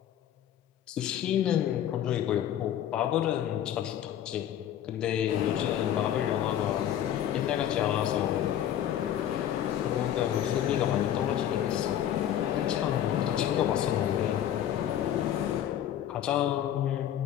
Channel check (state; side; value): quieter; right; 10.8 dB